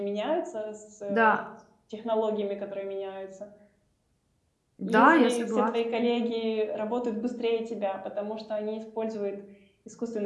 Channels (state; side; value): identical; both; correlation 1.00